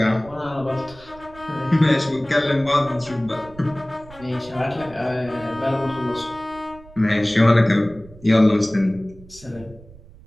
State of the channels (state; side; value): noise; right; rumble, 21 dB below the sound